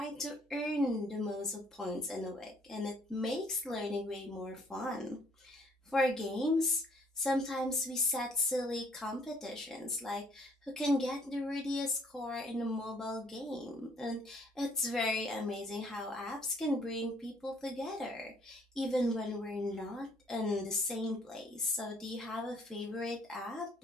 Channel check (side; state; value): both; normal; correlation 0.62